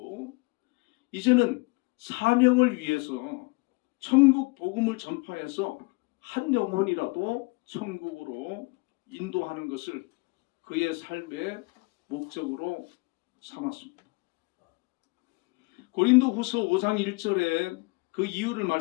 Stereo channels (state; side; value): quieter; right; 27.9 dB